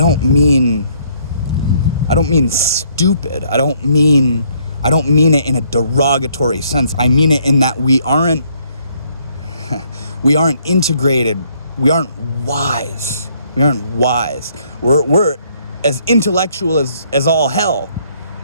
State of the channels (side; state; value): both; inverted; correlation -0.66